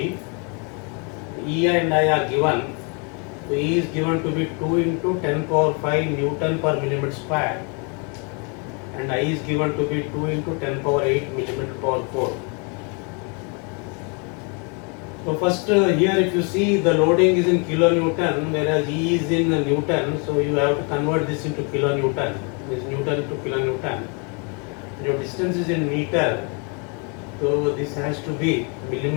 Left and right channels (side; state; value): right; quieter; 35.2 dB